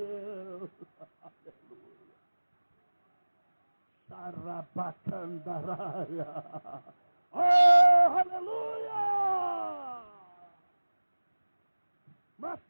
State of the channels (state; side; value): inverted; both; correlation -1.00